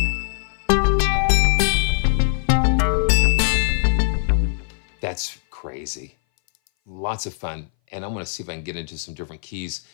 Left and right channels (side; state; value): right; silent; 60 dB below the other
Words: That's crazy. Lots of fun. And I'm going to see if I can get into some different keys.